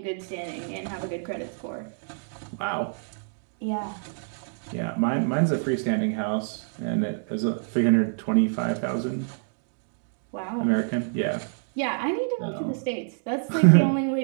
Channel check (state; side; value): silent; left; digital silence